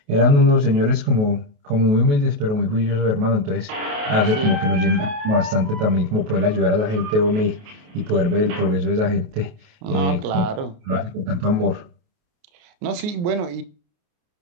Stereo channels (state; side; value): late; left; 28 ms